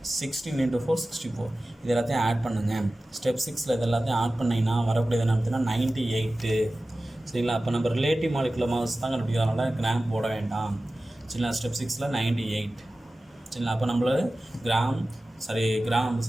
16 × 4 64. இது எல்லாத்தையும் ஆட் பண்ணுங்கள். ஸ்டெப் 6ல் இது எல்லாத்தையும் ஆட் பண்ணிங்கன்னா வரக்கூடியது என்ன பார்த்தீங்கன்னா 98. சரிங்களா? அப்போ நம்ம ரிலேட்டிவ் மாலிகுலர் மாஸ் தான் கண்டுபிடிக்கிறதுனால கிராம் போட வேண்டாம். சரிங்களா? ஸ்டெப் 6ல் 98. சரிங்களா? அப்போ நம்மள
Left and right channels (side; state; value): both; normal; correlation 0.96